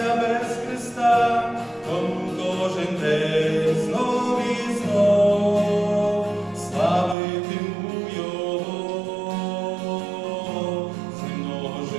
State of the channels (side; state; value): left; drops out; at 7.2 s